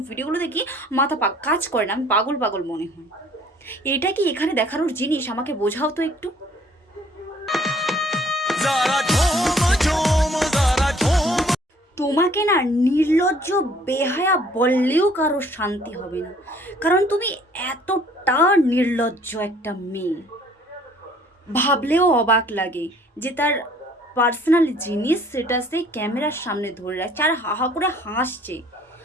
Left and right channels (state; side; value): normal; both; correlation 0.57